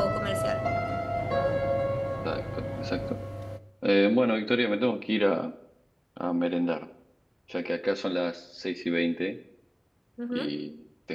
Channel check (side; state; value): both; identical; correlation 1.00